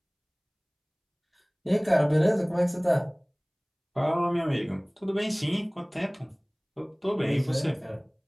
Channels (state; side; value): identical; both; correlation 1.00